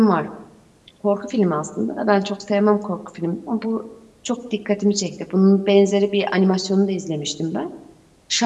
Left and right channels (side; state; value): both; identical; correlation 1.00